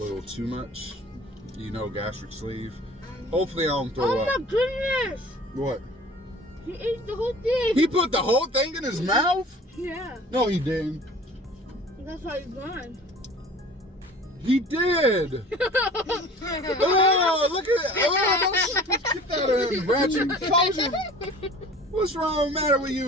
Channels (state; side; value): normal; both; correlation 0.45